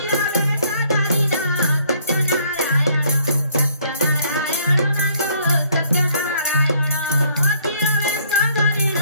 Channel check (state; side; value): inverted; both; correlation -0.63